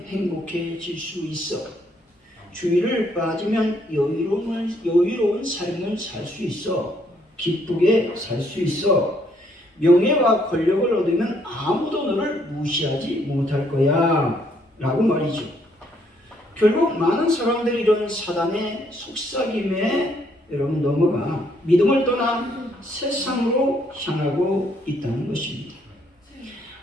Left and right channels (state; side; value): normal; both; correlation 0.69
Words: 행복해질 수 있어. 주의를 빠지면 여유로운 삶을 살 수 있어. 기쁘게 살 수 있어. 명예와 권력을 얻으면 아무도 너를 무시하지 못할 거야 라고 말이죠. 결국 많은 사람들이 이런 사단의 속삭임에 여러분 넘어가 믿음을 떠나 세상으로 향하고 있다는 것입니다.